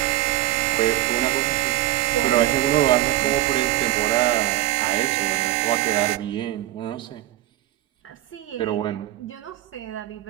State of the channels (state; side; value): quieter; left; 15.1 dB